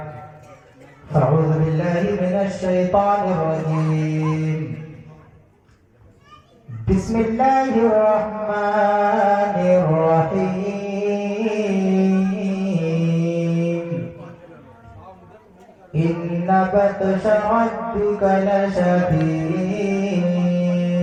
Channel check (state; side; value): identical; both; correlation 1.00